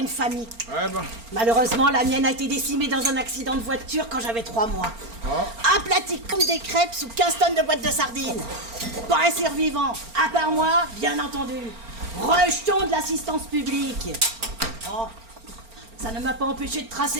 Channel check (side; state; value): left; late; 4.4 ms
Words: famille. Ouais, bah. Malheureusement, la mienne a été décimée dans un accident de voiture quand j'avais 3 mois. Aplatie comme des crêpes sous 15 tonnes de boîtes de sardines. Pas un survivant, à part moi, bien entendu. Rejeton de l'assistance publique. Oh, ça ne m'a pas empêché de